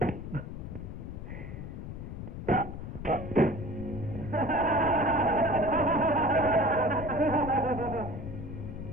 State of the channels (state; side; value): noise; left; rumble, 8 dB below the sound